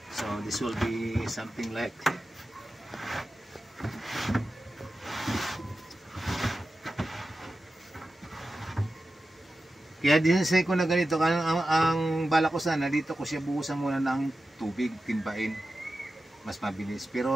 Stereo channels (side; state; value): both; normal; correlation 0.93